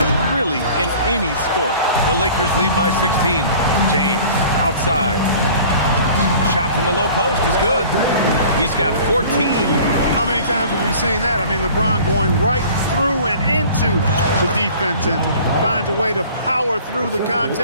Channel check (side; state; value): both; inverted; correlation -0.46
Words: really, in any sport. The Lakers lead by 16. James, outside. Shot from the low post is good. He's got 14. How many times have we seen that? I mean, LeBron going right through and into the defense and finds a way to power through the